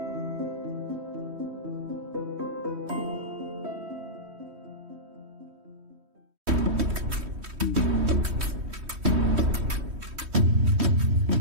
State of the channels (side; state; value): left; late; 3.1 ms